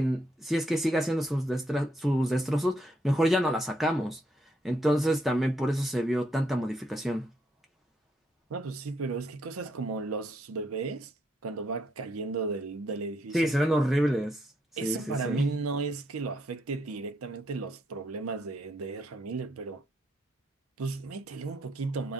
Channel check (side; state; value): both; normal; correlation 0.75